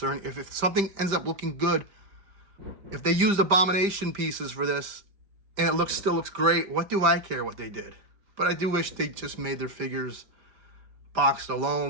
or if something ends up looking good, if they used Abomination pieces for this and it still looks great, what do I care what they did? But I do wish they just made their figures boxed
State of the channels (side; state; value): left; late; 5.1 ms